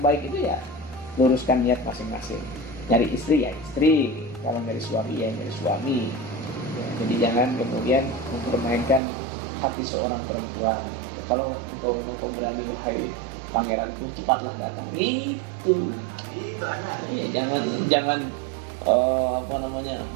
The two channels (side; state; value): left; drops out; at 9.0 s